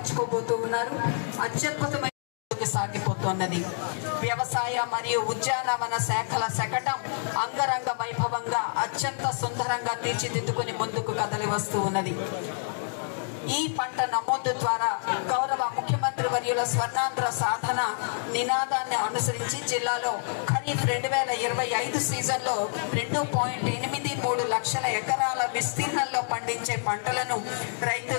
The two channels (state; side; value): silent; right; digital silence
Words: ఉన్నారు. అత్యద్భుతమైన సాగిపోతున్నది. వ్యవసాయ మరియు ఉద్యానవన శాఖల శకటం అంగరంగ వైభవంగా అత్యంత సుందరంగా తీర్చిదిద్దుకుని ముందుకు కదలి వస్తూ ఉన్నది. ఈ పంట నమోదు ద్వారా గౌరవ ముఖ్యమంత్రి వర్యుల స్వర్ణాంధ్ర సాధన నినాదాన్ని అనుసరించి జిల్లాలో ఖరీఫ్ 2025 సీజన్లో 2.83 లక్షల ఎకరాల విస్తీర్ణంలో పండించే పంటలను రైతు